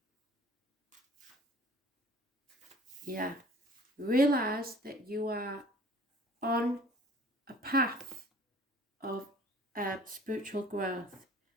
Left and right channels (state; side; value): normal; both; correlation 0.50